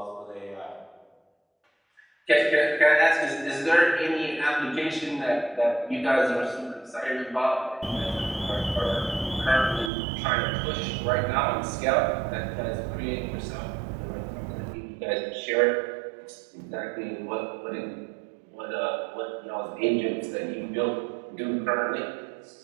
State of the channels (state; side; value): drops out; left; at 9.9 s